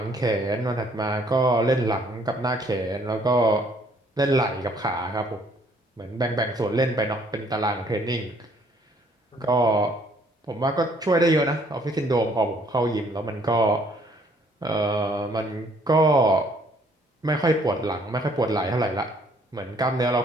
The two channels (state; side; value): normal; both; correlation 0.63